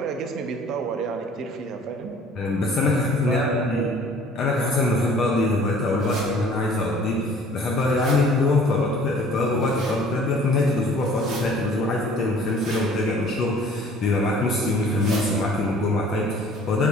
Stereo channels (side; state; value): both; normal; correlation 0.52